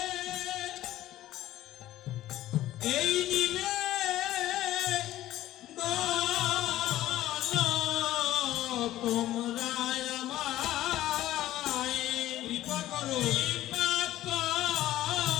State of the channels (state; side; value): quieter; right; 14.4 dB